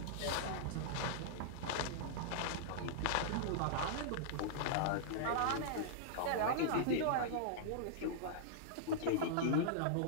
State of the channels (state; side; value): different; both; correlation -0.02